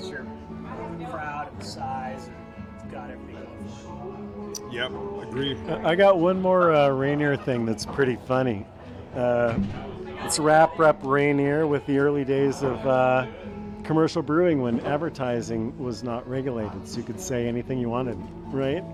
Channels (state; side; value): identical; both; correlation 1.00